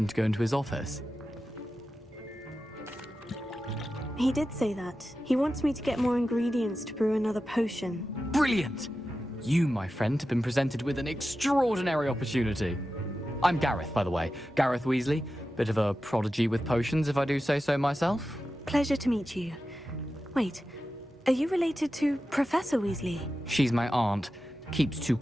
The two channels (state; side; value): normal; both; correlation 0.92